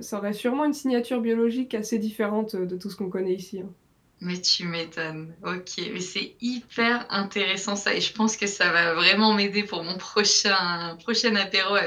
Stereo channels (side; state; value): both; identical; correlation 1.00